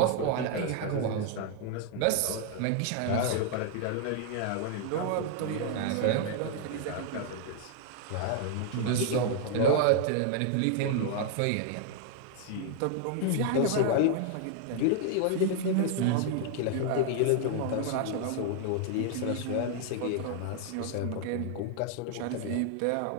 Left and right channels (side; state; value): both; different; correlation 0.00